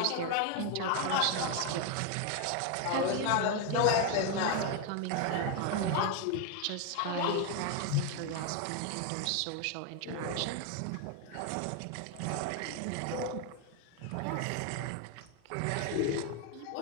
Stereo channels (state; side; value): different; both; correlation 0.01